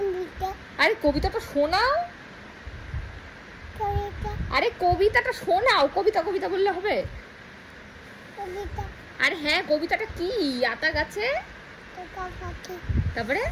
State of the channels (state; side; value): identical; both; correlation 1.00